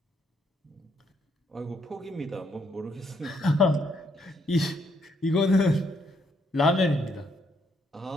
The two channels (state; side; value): normal; both; correlation 0.73